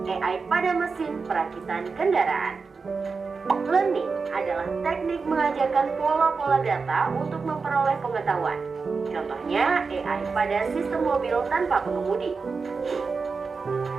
AI pada mesin perakitan kendaraan. Learning adalah teknik mengajarkan pola-pola data untuk memperoleh pengetahuan. Contohnya AI pada sistem mobil tanpa pengemudi.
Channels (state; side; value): quieter; left; 4.7 dB